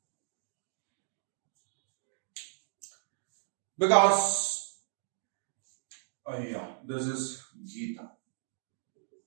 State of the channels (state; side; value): silent; left; digital silence